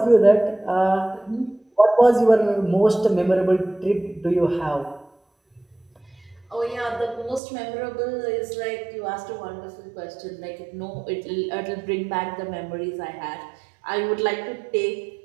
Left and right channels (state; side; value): drops out; left; at 7.4 s